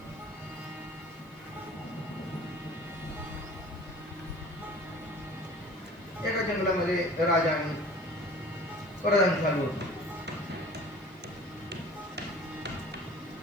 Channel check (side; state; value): right; noise; hiss, 30 dB below the sound